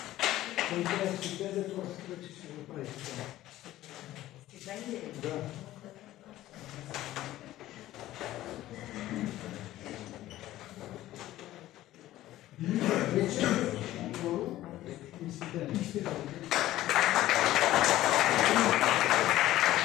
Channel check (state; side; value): quieter; right; 14.9 dB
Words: Той трябва стипендия, това се вече ще го прави. Стипендия? Да. Вече, второ, И стипендия.